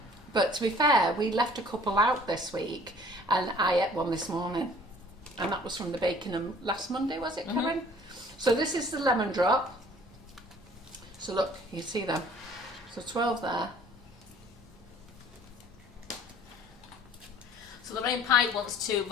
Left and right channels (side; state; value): both; normal; correlation 0.53